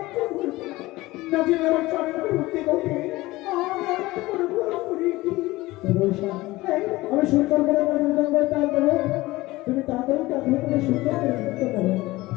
আমি সুন্দর করে তুমি তাড়াতাড়ি তাকে সুন্দর করে নৃত্য করো।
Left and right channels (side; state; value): right; quieter; 19.4 dB